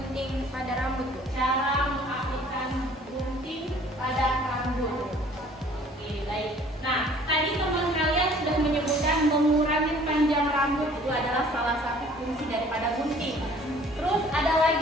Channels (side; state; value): both; normal; correlation 0.53